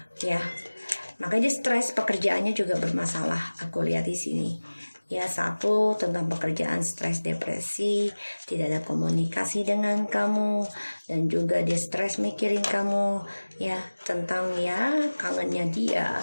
ya. Makanya dia stres, pekerjaannya juga bermasalah. Aku lihat di sini. Ya, satu tentang pekerjaan, stres, depresi, tidak ada komunikasi dengan kamu, dan juga dia stres mikirin kamu, ya, tentang ya kangennya dia.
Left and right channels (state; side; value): inverted; both; correlation -1.00